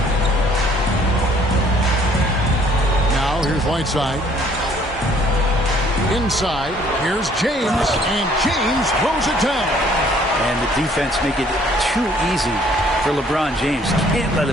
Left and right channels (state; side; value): normal; both; correlation 0.60